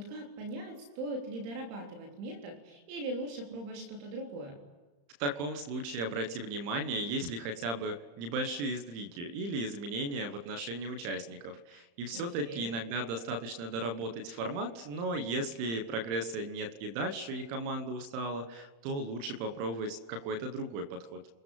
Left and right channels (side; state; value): left; late; 35 ms